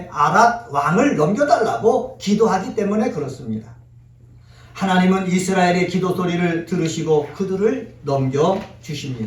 아랏 왕을 넘겨달라고 기도하기 때문에 그렇습니다. 하나님은 이스라엘의 기도 소리를 들으시고 그들을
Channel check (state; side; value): identical; both; correlation 1.00